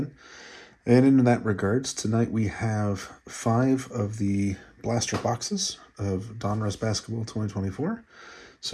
And in that regards, tonight we have 5 of the blaster boxes of Donruss Basketball 2024.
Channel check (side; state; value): both; identical; correlation 1.00